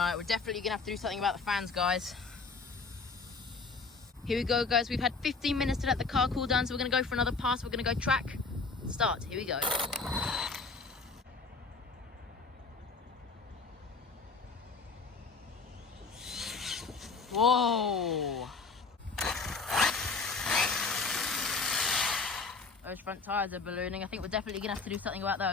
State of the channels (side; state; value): right; quieter; 4.4 dB